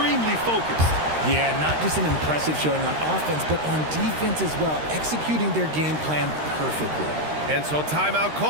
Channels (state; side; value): late; left; 13 ms